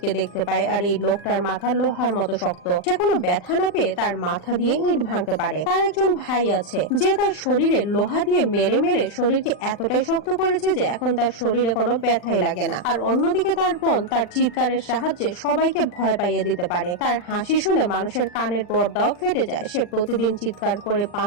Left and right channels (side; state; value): right; late; 40 ms